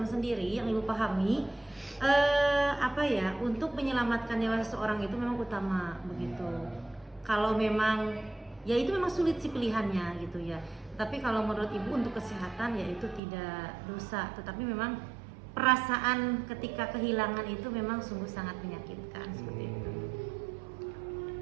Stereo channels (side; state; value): left; drops out; at 13.2 s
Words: sendiri yang ibu pahami, untuk menyelamatkan nyawa seseorang itu memang utama begitu. Kalau memang ya itu memang sulit sih pilihannya gitu ya. Tapi kalau menurut ibu untuk kesehatan ya itu tidak dosa, tetapi memang perasaan ketika kehilangan itu memang sungguh sangat menyakitkan seperti itu.